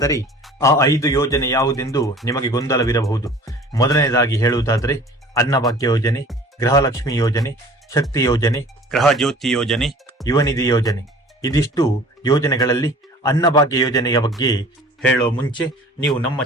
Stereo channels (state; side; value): normal; both; correlation 0.46